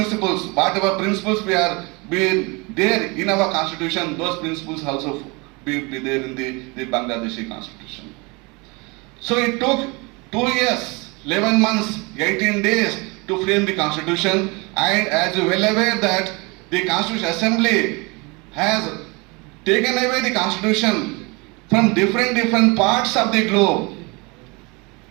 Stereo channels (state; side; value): quieter; left; 27.7 dB